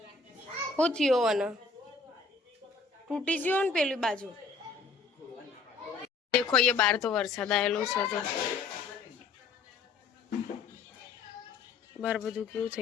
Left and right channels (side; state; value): right; quieter; 4.3 dB